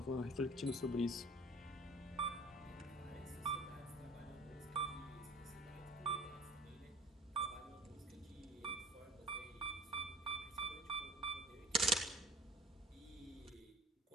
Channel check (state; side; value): normal; both; correlation 0.48